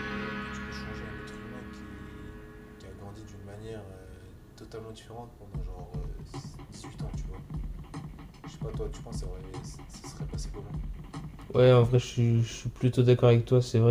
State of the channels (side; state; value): both; identical; correlation 1.00